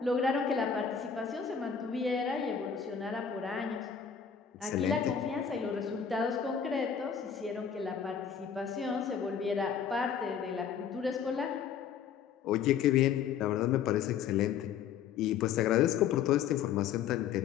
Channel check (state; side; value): quieter; right; 7.6 dB